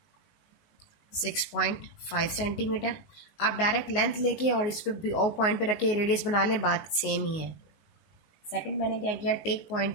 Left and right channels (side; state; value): right; late; 19 ms